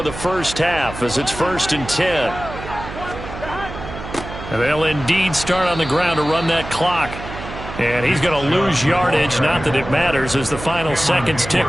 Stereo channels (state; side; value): noise; right; hum, 11 dB below the sound